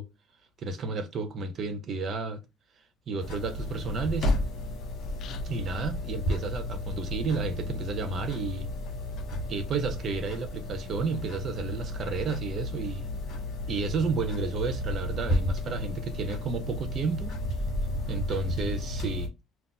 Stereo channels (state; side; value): normal; both; correlation 0.45